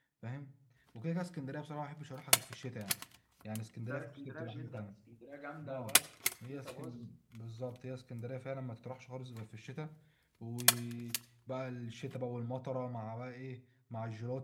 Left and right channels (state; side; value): identical; both; correlation 1.00